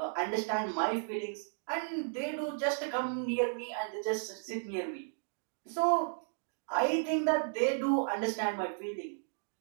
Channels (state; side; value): silent; left; digital silence